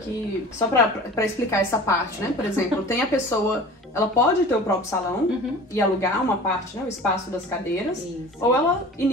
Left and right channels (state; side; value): normal; both; correlation 0.40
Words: só pra explicar essa parte, né? Por exemplo, tem a pessoa... Ela pode ter o próprio salão e alugar uma parte, né? O espaço das cadeiras. Ou ela